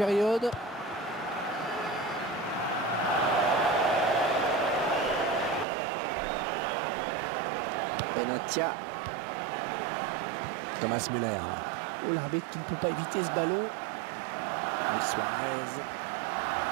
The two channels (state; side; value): drops out; left; at 5.7 s